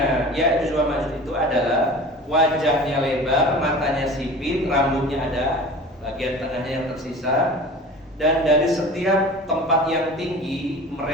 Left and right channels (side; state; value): both; normal; correlation 0.39